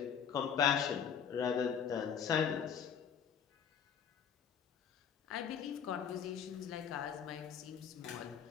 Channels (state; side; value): quieter; right; 7.7 dB